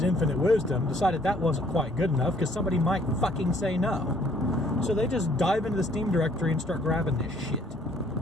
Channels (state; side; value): normal; both; correlation 0.62